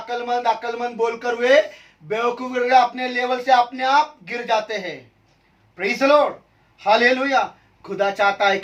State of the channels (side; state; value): both; identical; correlation 1.00